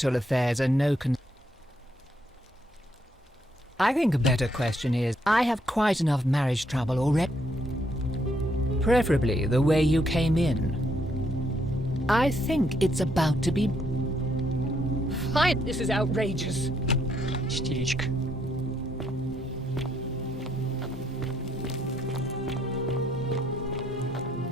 affairs are no concern. I think a better question is, I have quite enough marriage trouble already. Preferably the way you came in. I think it's about to be... Fine, this is outrageous. Истеричка.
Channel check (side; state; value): both; normal; correlation 0.73